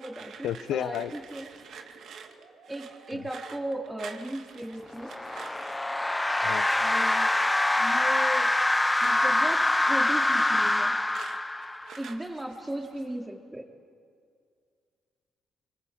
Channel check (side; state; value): both; normal; correlation 0.97